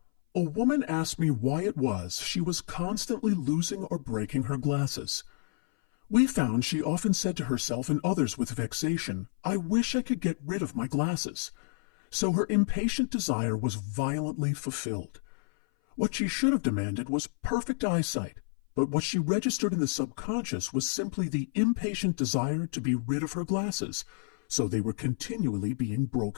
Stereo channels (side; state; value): right; silent; 56 dB below the other